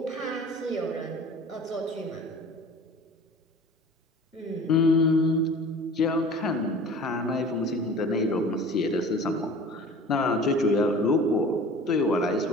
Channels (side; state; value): both; normal; correlation 0.43